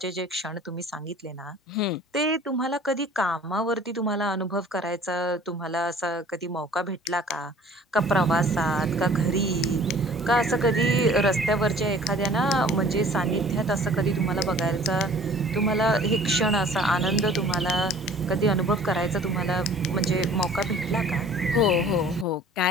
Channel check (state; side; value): normal; both; correlation 0.50